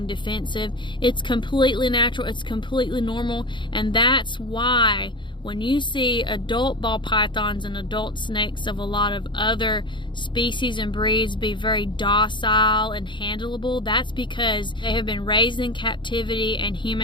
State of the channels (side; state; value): right; late; 0.23 ms